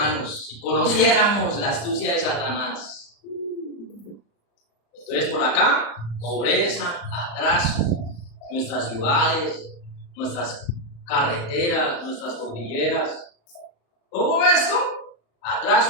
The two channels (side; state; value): right; late; 35 ms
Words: si conociéramos la astucia de Satanás. Entonces, por acá, pobreza, atraso, nuestras ciudades, nuestras carreteras, nuestras cordilleras. Todo esto,